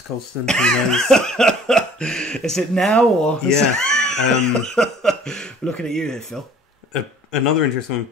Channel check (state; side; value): normal; both; correlation 0.51